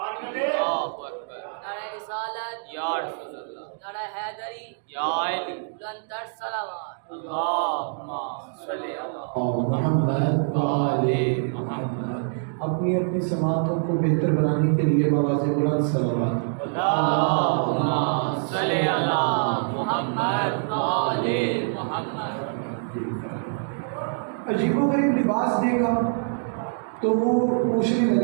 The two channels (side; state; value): left; silent; digital silence